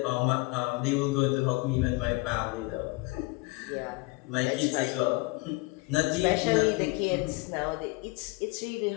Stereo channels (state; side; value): quieter; right; 24.5 dB